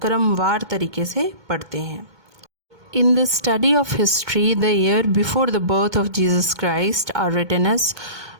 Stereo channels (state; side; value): late; left; 1.2 ms